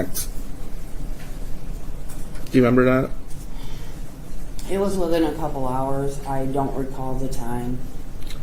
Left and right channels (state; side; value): identical; both; correlation 1.00